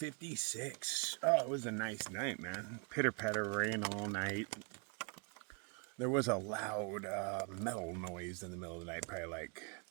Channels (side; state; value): left; quieter; 34.8 dB